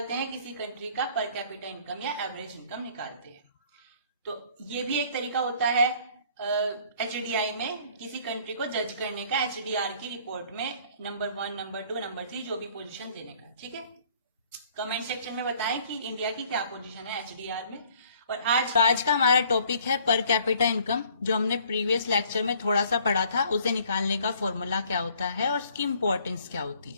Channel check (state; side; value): inverted; both; correlation -0.57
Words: हैं, किसी कंट्री का पर कैपिटा इनकम या एवरेज इनकम निकालते हैं। तो ये भी एक तरीका होता है HDI में किसी कंट्री को जज करने का, HDR की रिपोर्ट में नंबर 1, नंबर 2, नंबर 3 जो भी पोजीशन देने का, ठीक है। कमेंट सेक्शन में बताएं कि इंडिया की क्या पोजीशन है HDR में। और आज का हमारा टॉपिक है पर कैपिटा इनकम, जो हमने प्रीवियस लेक्चर में थोड़ा सा पढ़ा था, उसे निकालने का फॉर्मूला क्या होता है और उसकी इंपॉर्टेंस क्या होती